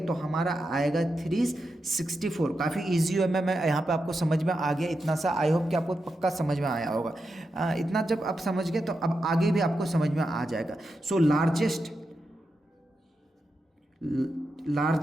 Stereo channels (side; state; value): both; normal; correlation 0.87